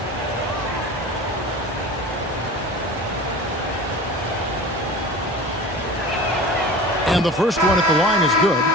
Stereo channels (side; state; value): both; normal; correlation 0.36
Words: And the first one at the line is good.